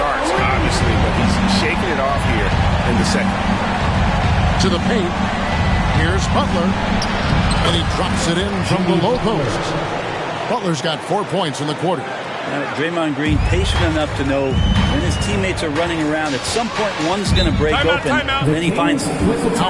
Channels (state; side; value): identical; both; correlation 1.00